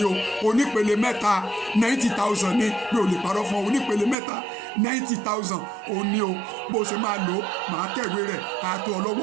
o onípele mẹ́ta 90,000 ní mi ò lè parọ́ fún ọ onípele mẹ́ta 90,000 ò ní o bó ṣe máa lò ó máa tẹ̀wé rẹ̀ àtò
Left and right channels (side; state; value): left; drops out; at 4.2 s